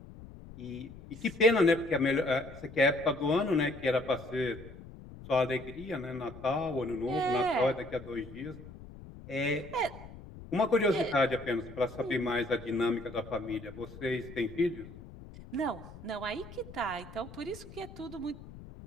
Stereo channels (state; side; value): noise; left; rumble, 16 dB below the sound